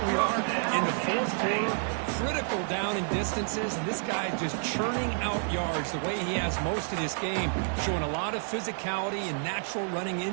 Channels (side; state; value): left; silent; digital silence